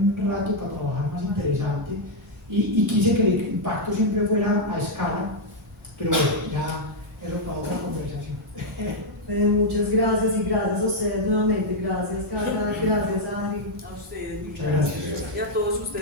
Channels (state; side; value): normal; both; correlation -0.01